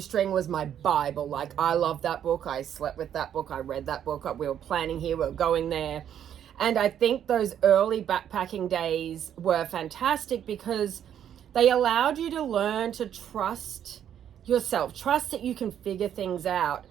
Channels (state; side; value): quieter; left; 9.7 dB